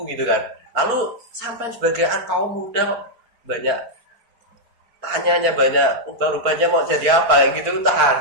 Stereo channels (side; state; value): left; late; 4.4 ms